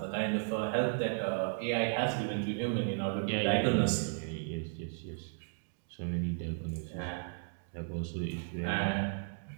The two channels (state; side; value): silent; left; digital silence